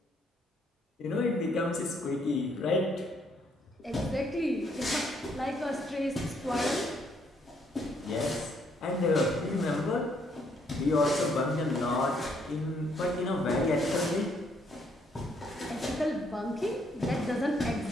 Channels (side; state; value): both; normal; correlation 0.70